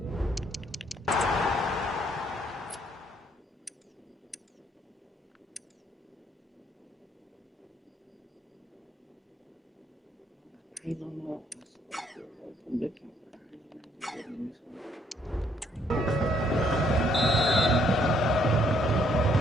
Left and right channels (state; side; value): normal; both; correlation 0.68